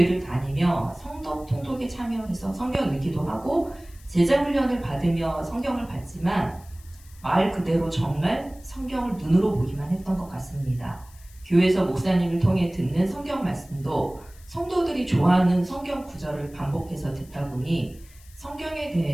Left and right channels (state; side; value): noise; left; hiss, 25 dB below the sound